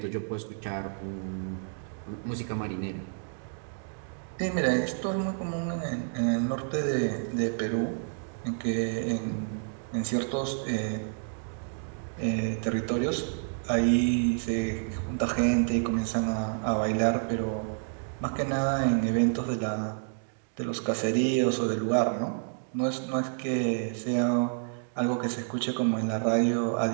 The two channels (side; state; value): left; silent; digital silence